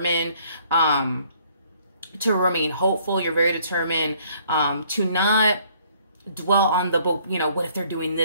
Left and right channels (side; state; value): both; inverted; correlation -0.62